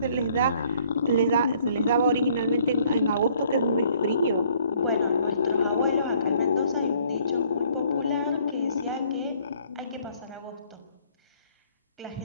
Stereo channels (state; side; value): inverted; both; correlation -0.61